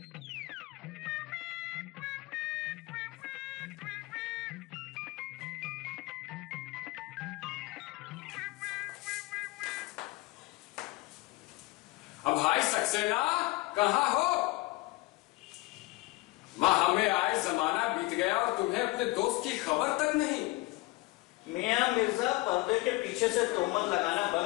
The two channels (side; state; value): right; quieter; 21.5 dB